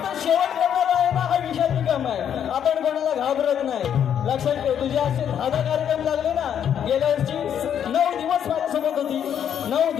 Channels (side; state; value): right; quieter; 9.0 dB